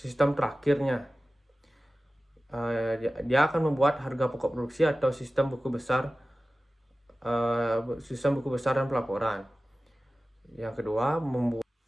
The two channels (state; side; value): normal; both; correlation 0.96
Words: terakhirnya. Dia akan membuat harga pokok produksi atau sistem buku besar dan pelaporan. Yang kedua,